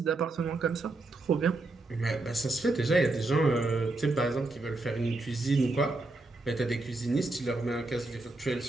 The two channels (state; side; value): quieter; left; 3.0 dB